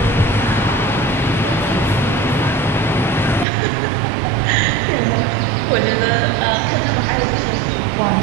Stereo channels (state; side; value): drops out; left; at 3.5 s